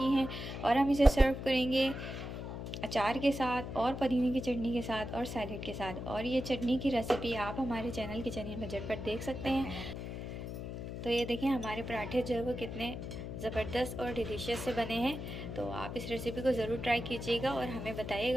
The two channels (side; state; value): left; noise; hum, 7 dB below the sound